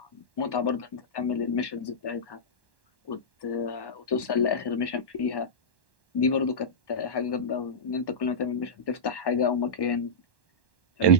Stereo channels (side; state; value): right; late; 1.1 ms